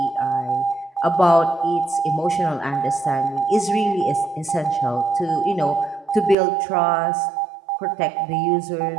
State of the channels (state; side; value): drops out; left; at 6.4 s